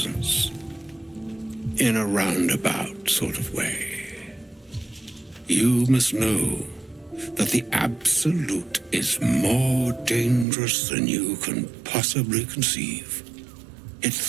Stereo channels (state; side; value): drops out; left; at 10.5 s